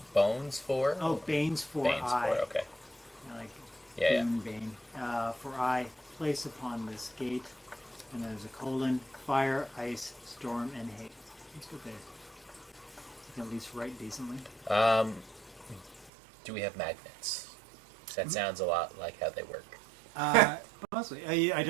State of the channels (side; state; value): left; drops out; at 16.1 s